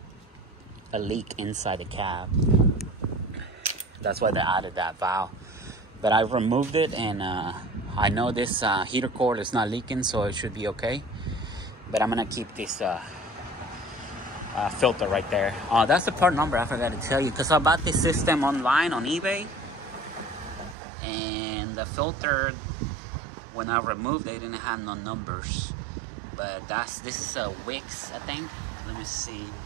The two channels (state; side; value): drops out; left; at 20.8 s